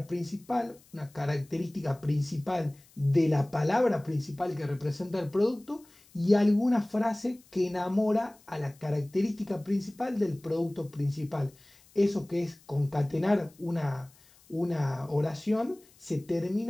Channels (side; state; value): left; noise; hiss, 28 dB below the sound